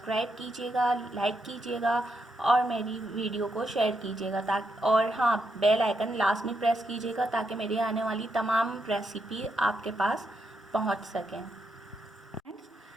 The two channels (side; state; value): both; normal; correlation 0.81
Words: कीजिएगा, लाइक कीजिएगा और मेरी वीडियो को शेयर कीजिएगा ताकि और हाँ, बेल आइकन लास्ट में प्रेस कीजिएगा ताकि मेरी आने वाली तमाम रेसिपी आपके पास पहुँच सकें।